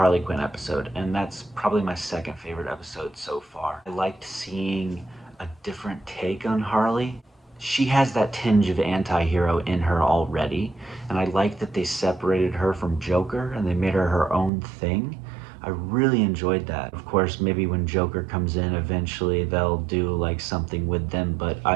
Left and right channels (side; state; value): left; drops out; at 14.5 s